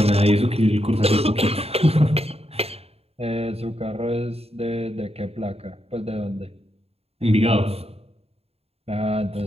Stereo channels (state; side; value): late; left; 0.29 ms